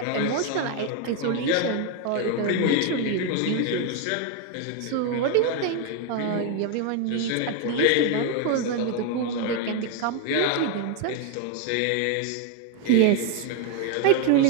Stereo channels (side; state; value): both; different; correlation 0.01